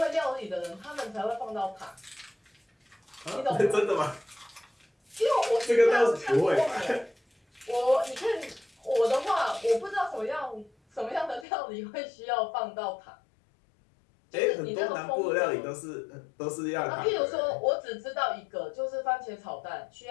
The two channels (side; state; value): right; drops out; at 11.5 s